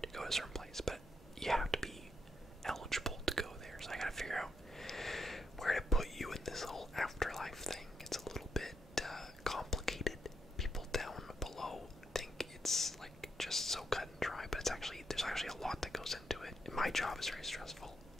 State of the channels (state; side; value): normal; both; correlation 0.80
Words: to go to a certain place. But you have to be eligible to go there. So I gotta figure out where to put you in this whole afterlife thing. It's a little bit complicated. People down below think it's like just so cut and dry, but there's actually a lot that goes into it. And my job is very stressful,